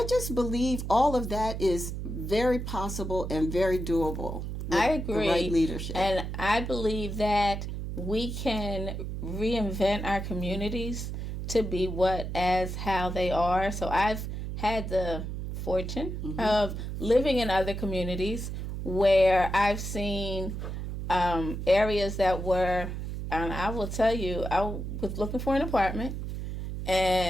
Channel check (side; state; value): right; noise; hum, 5 dB below the sound